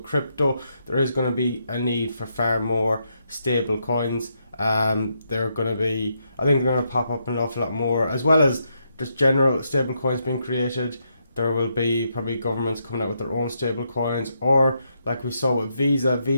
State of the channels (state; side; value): inverted; both; correlation -0.79